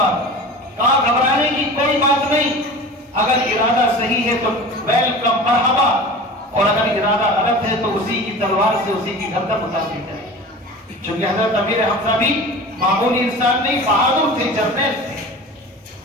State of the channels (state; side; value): normal; both; correlation 0.36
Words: کہا گھبرانے کی کوئی بات نہیں, اگر ارادہ صحیح ہے تو ویلکم مرحبا, اور اگر ارادہ غلط ہے تو اسی کی تلوار سے اسی کی گردن اتار دیتا ہے. چونکہ حضرت امیر حمزہ بھی معمولی انسان نہیں, بہادر تھے, جرنیل تھے.